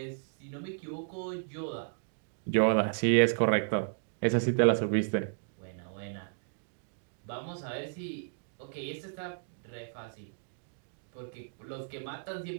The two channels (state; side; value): silent; left; digital silence